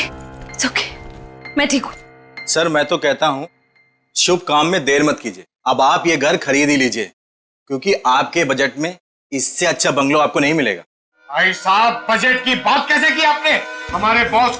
मैं ठीक हूँ। सर मैं तो कहता हूँ शुभ काम में देर मत कीजिए, अब आप ये घर खरीद ही लीजिए, क्योंकि आपके बजट में इससे अच्छा बंगलो आपको नहीं मिलेगा। भाई साहब, बजट की बात कैसे की आपने? हमारे बॉस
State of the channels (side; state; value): both; identical; correlation 1.00